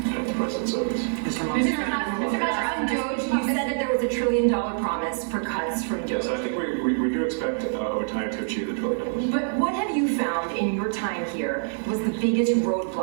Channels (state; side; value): silent; left; digital silence